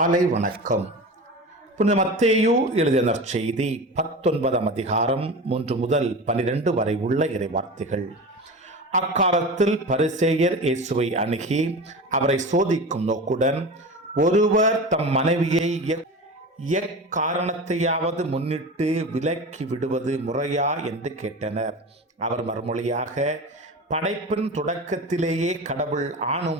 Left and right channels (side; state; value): both; normal; correlation 0.30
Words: வணக்கம். புனித மத்தேயு எழுதிய நற்செய்தி 19ஆம் அதிகாரம் 1 முதல் 12 வரை உள்ள இறைவார்த்தைகள். அக்காலத்தில் பரிசேயர் இயேசுவை அணுகி அவரை சோதிக்கும் நோக்குடன், ஒருவர் தம் மனைவியை எக்காரணத்தையாவது முன்னிட்டு விலக்கி விடுவது முறையா என்று கேட்டனர். அவர் மறுமொழியாக, படைப்பின் தொடக்கத்திலேயே கடவுள்